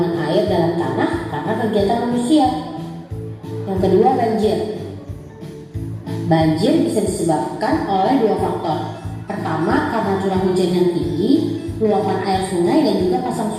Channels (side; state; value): both; identical; correlation 1.00